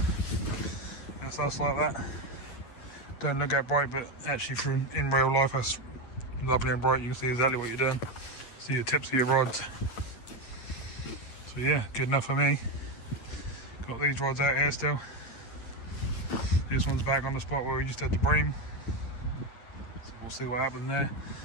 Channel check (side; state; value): right; late; 8.5 ms